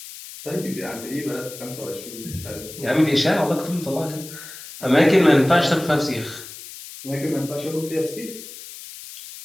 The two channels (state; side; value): noise; left; hiss, 14 dB below the sound